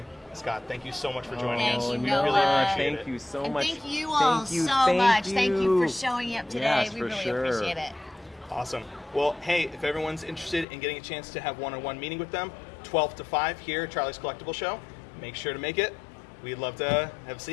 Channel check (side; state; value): right; drops out; at 10.7 s